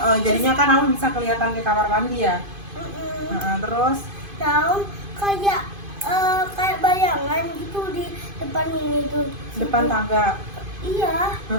Jadinya kan Aun bisa kelihatan ke kamar mandi ya. Terus Nah, Aun kayak kayak bayangan gitu di depan ini tuh. depan Situ. tangga. Iya,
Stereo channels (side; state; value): left; late; 2.5 ms